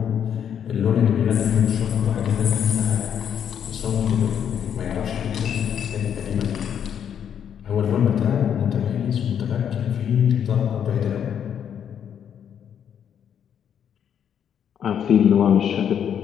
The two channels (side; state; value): right; quieter; 8.7 dB